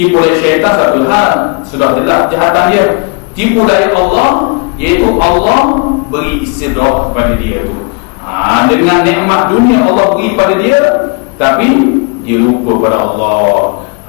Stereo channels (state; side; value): quieter; right; 32.6 dB